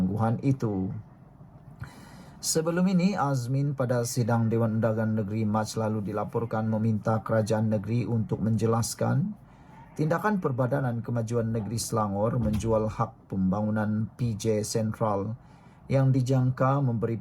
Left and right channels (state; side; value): identical; both; correlation 1.00